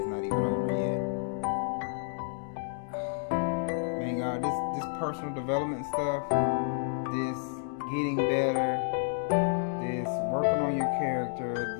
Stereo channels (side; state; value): right; silent; digital silence